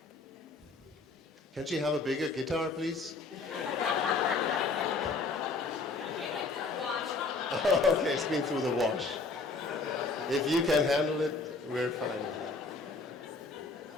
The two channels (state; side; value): quieter; right; 3.8 dB